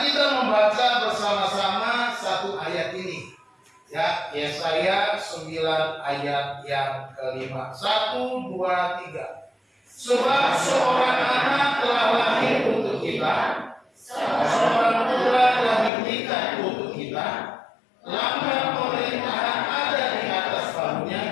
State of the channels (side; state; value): right; drops out; at 15.9 s